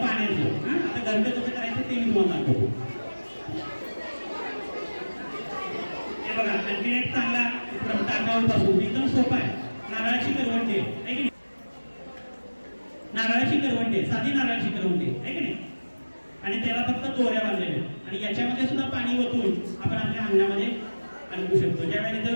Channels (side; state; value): both; inverted; correlation -1.00